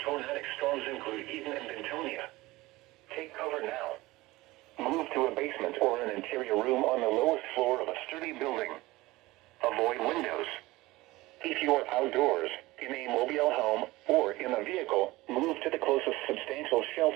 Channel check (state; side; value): quieter; left; 19.6 dB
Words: tornadic storms include Eden and Bentonia. Take cover now. Move to a basement or an interior room on the lowest floor of a sturdy building. Avoid windows. If you are outdoors, in a mobile home, or in a vehicle, move to the closest substantial